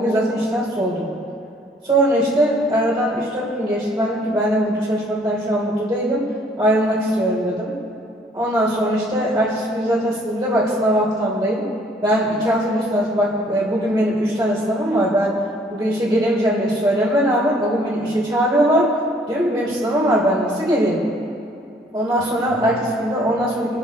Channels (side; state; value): both; normal; correlation 0.61